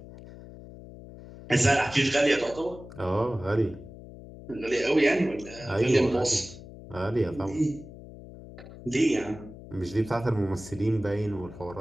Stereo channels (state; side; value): noise; left; hum, 16 dB below the sound